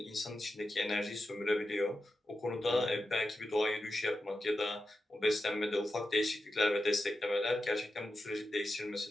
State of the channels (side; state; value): both; normal; correlation 0.90